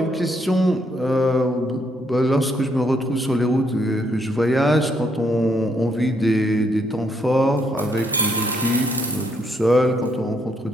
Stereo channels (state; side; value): normal; both; correlation 0.73